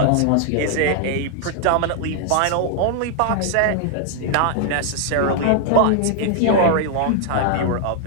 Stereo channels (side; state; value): both; different; correlation 0.00